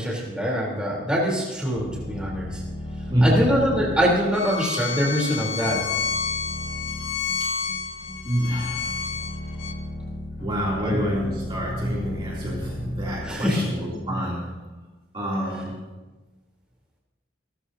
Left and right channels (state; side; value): normal; both; correlation 0.56